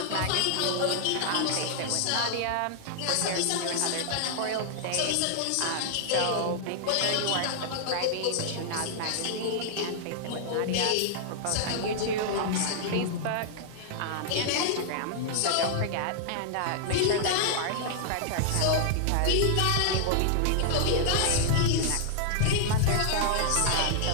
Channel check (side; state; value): both; different; correlation -0.01